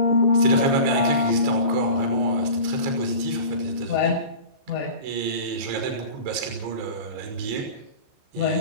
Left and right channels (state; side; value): late; left; 15 ms